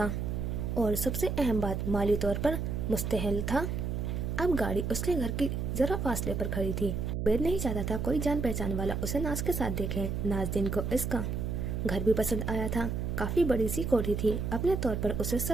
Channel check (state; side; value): noise; right; hum, 2 dB below the sound